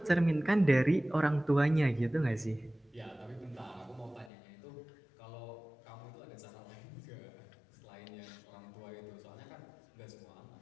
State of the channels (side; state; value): right; drops out; at 4.3 s